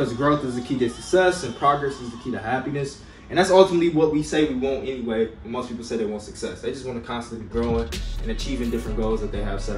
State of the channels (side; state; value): both; identical; correlation 1.00